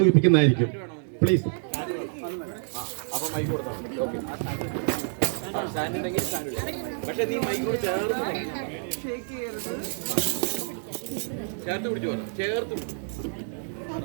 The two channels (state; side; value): silent; left; 60 dB below the other